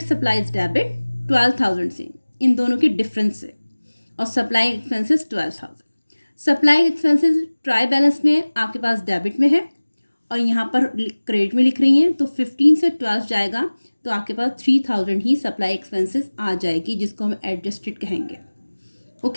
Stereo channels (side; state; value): both; inverted; correlation -1.00